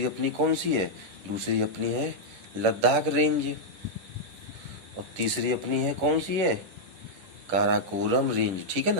अपनी कौन सी है? दूसरी अपनी है लद्दाख रेंज। और तीसरी अपनी है कौन सी है? काराकोरम रेंज, ठीक है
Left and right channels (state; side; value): late; left; 11 ms